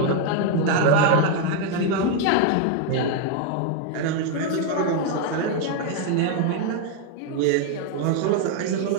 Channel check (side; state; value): both; different; correlation 0.00